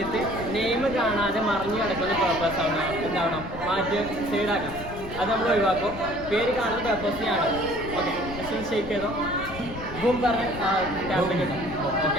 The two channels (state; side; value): noise; left; rumble, 12 dB below the sound